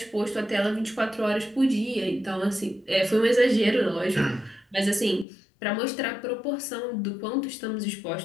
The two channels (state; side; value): drops out; right; at 5.2 s